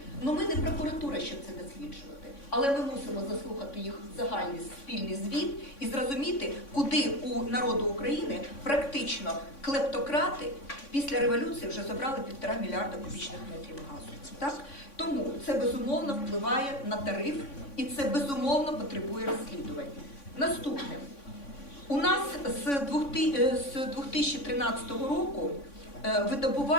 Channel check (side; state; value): right; late; 3.6 ms